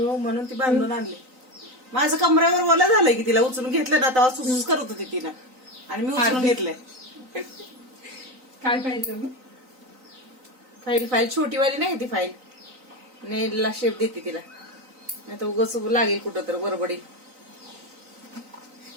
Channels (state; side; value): late; left; 3.9 ms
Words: म्हणून ती बांधून आणली. माझं कमऱ्यावर ओला झालंय की तिला उचलून घेतलं ना तेव्हा सुसूस करत होती तिनं आणि मी उचलून घेतलंय. काय पाहिजे फाईल छोटीवाली नाही ती फाईल नेलला शेप देते तिला नाही तर उगाच लागेल कुठं तर बरोबडी.